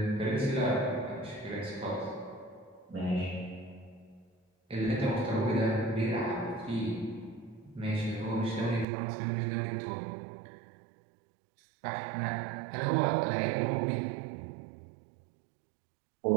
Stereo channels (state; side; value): drops out; left; at 8.8 s